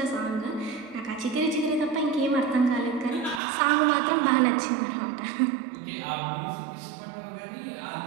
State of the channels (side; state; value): left; drops out; at 3.4 s